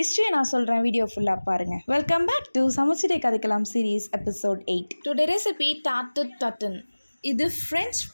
நான் சொல்கிறேன், வீடியோ ஃபுல்லாக பாருங்கள். வெல்கம் பேக் டு சமைச்சிட்டே கதைக்கலாம் series episode 8. Today recipe tarte tatin. இது ஃப்ரெஞ்ச்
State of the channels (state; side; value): inverted; both; correlation -1.00